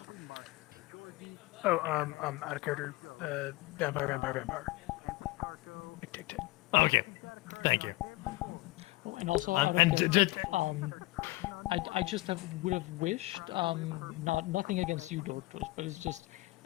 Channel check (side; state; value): right; quieter; 20.5 dB